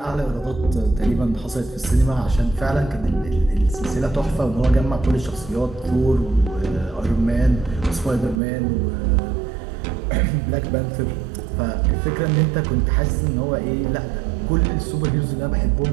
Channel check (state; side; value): drops out; left; at 8.4 s